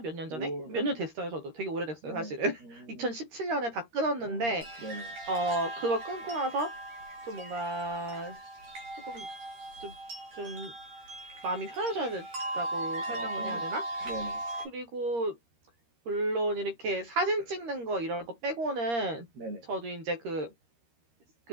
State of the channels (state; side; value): late; left; 13 ms